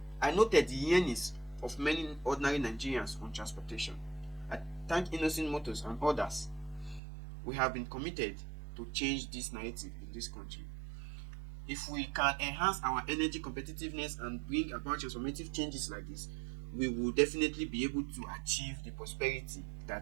I thank Inaugorated Motors and others. We have been committed to change this narrative in this country. If we can enhance our energy competitiveness and bring about transformative changes like this, we will definitely be able to achieve the prosperity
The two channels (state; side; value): drops out; left; at 7.0 s